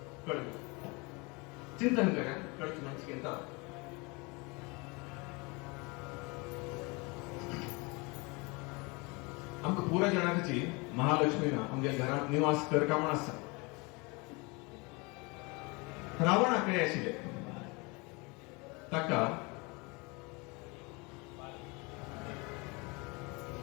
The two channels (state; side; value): quieter; right; 27.8 dB